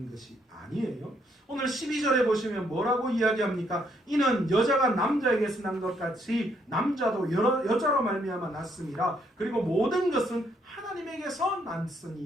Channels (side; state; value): both; normal; correlation 0.71